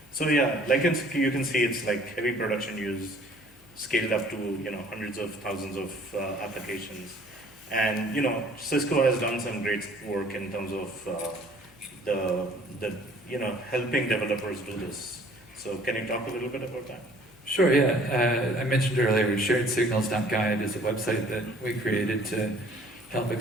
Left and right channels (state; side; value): noise; left; hum, 27 dB below the sound